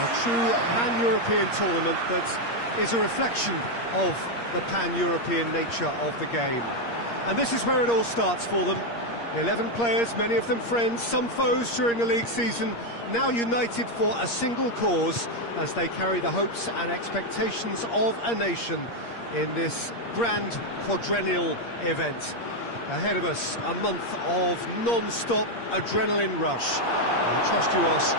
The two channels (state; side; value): late; right; 8.6 ms